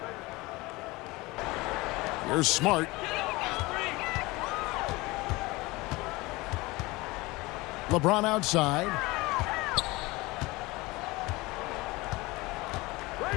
Here's Smart. LeBron outside.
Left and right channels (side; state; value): right; quieter; 22.2 dB